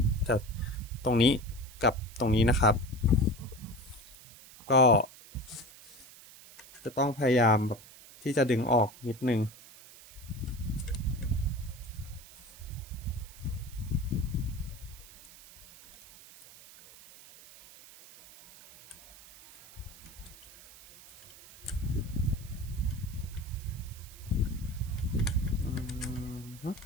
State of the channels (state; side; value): noise; right; hiss, 20 dB below the sound